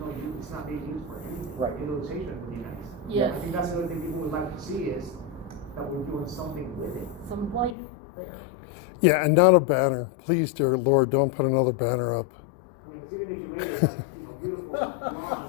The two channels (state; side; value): drops out; right; at 7.8 s